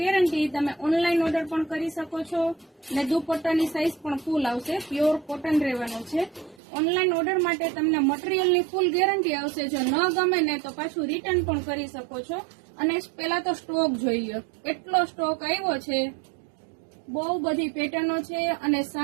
તમે ઓનલાઈન ઓર્ડર પણ કરી શકો છો અને દુપટ્ટાની સાઇઝ પણ ફૂલ આવશે. પ્યોર કોટન રહેવાનું છે. ઓનલાઈન ઓર્ડર માટે તમને મટીરિયલની ફૂલ ગેરંટી આવશે. જો ન ગમે ને તો પાછું રિટર્ન પણ કરી શકો છો. અને પહેલા તો સ્ટોક જોઈએ, એટલો સ્ટોક આવ્યો છે. બહુ બધી પેટર્નો છે અને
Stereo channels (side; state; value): left; drops out; at 6.6 s